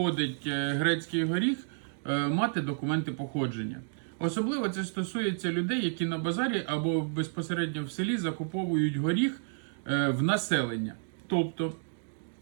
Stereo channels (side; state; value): left; silent; digital silence